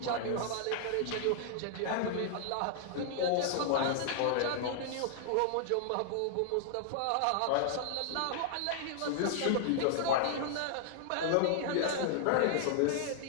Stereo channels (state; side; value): different; both; correlation -0.01